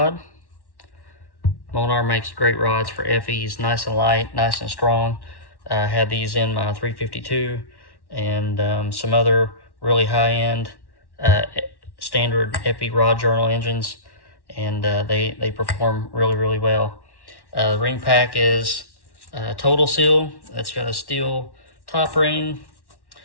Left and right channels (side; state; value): right; late; 1.1 ms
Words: Molnar makes great rods for FEs, nice and light, nice and strong. I had these in my 352 and some other really high-end standard FE rod journal engines, and they perform really well. The ring pack is Total Seal. It's got a steel top ring